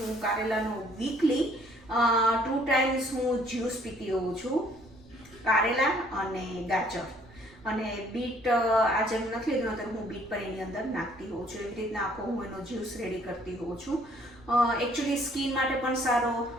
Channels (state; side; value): noise; right; rumble, 25 dB below the sound